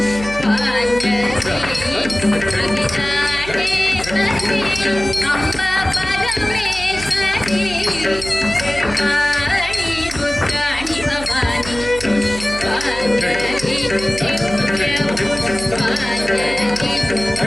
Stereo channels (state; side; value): noise; right; hum, 12 dB below the sound